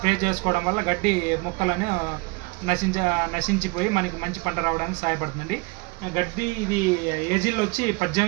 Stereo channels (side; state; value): left; quieter; 26.0 dB